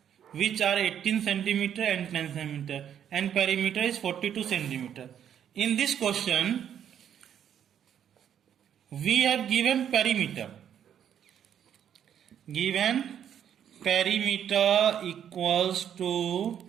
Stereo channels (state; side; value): quieter; left; 9.3 dB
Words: which are 18 centimeter and 10 centimeter and perimeter is 42 centimeter. In this question we have given perimeter. Given perimeter equals to